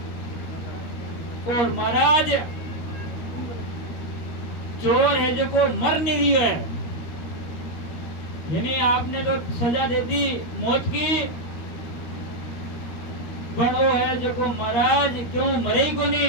और महाराज चोर है जो को मर नहीं रही है, यानी आपने तो सजा दे दी मौत की, पर वो है जो को महाराज क्यों मरे ही को नहीं।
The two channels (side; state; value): right; late; 13 ms